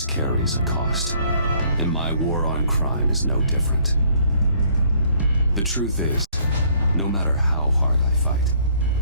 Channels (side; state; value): both; inverted; correlation -0.62